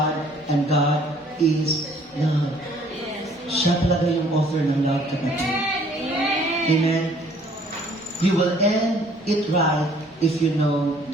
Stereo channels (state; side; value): normal; both; correlation 0.59